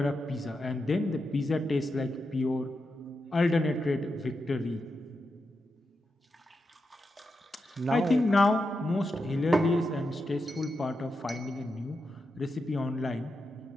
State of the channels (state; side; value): normal; both; correlation 0.87